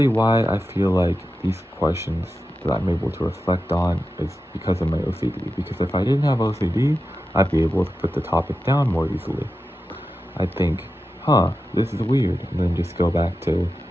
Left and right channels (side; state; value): both; normal; correlation 0.91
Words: why I feel like these questions that I'm able to reflect on is because of my OCD. Because if I didn't have OCD, I'd be able to put the topic down more easily. I'd think, this is weird, and then just go back to